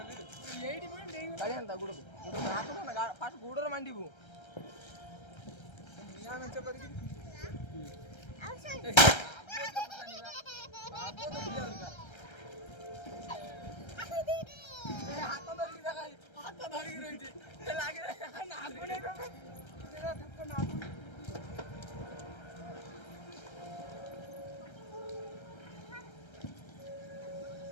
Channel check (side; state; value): right; late; 1.3 ms